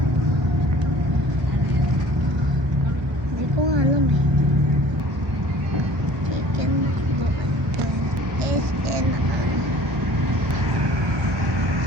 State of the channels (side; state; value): left; late; 1.1 ms